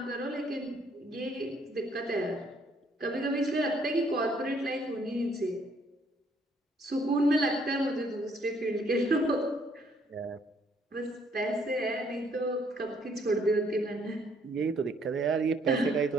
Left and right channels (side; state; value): both; normal; correlation 0.66